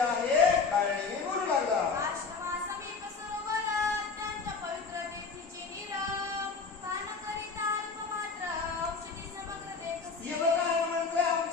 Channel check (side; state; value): right; quieter; 4.8 dB